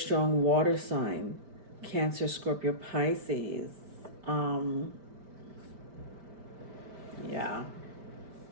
water sign. Cancer, Scorpio, Pisces. Yeah.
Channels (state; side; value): late; left; 5.1 ms